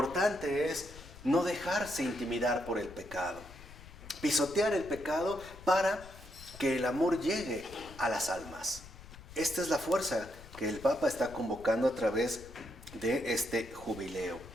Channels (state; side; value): noise; left; rumble, 17 dB below the sound